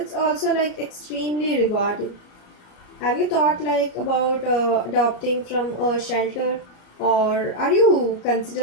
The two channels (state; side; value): late; right; 34 ms